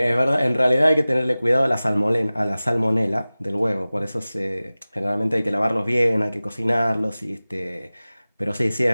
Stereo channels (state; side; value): inverted; both; correlation -0.98